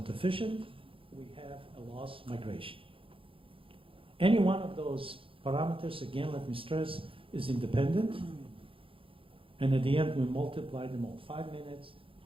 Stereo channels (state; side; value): late; left; 0.26 ms